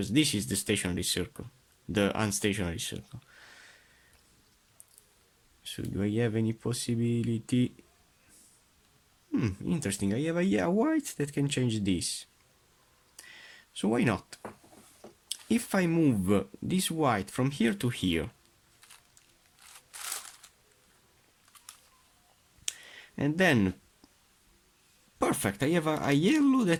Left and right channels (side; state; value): both; identical; correlation 1.00